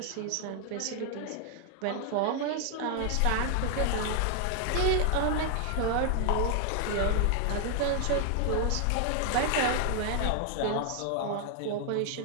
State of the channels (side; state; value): both; different; correlation 0.00